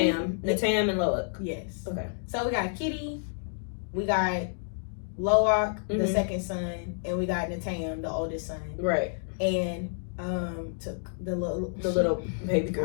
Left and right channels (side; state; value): right; silent; digital silence